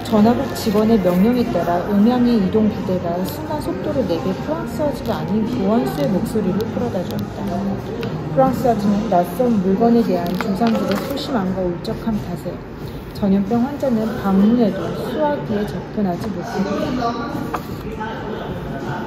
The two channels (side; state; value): both; identical; correlation 1.00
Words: 전화국 직원의 명령에 따라 음향의 이동 부대가 순간 속도를 내게 프랑스 아주가 아닌 보안수의 목소리를 끌어다 줬다. 프랑스 아주는 낯선 물건에 대한 조상들의 소심함과 울적한 탓에 전염병 환자는 방문해도 수화기에 접근하지 못했다.